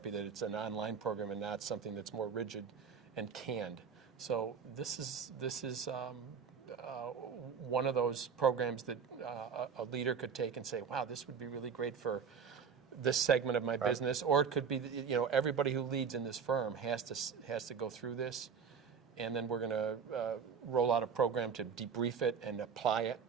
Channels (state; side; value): quieter; left; 6.5 dB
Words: that it's an online program and not something that's more rigid and canned. So this is one of those programs that a leader could take and say, wow, this would be really great for this segment of my business. Or it could be, everybody who leads in this firm has to go through this. And then we're going to roll out a program to debrief it and apply it.